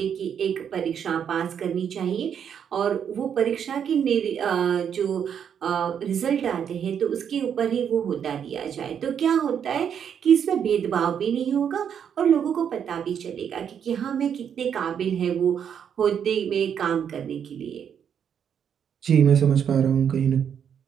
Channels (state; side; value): quieter; left; 8.1 dB